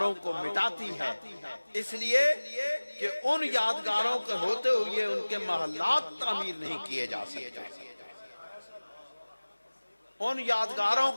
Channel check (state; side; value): inverted; both; correlation -1.00